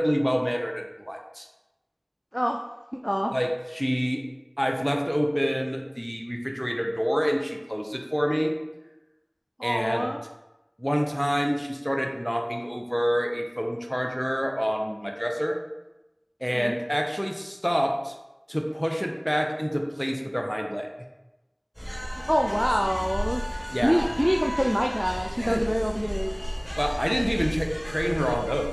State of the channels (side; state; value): both; identical; correlation 1.00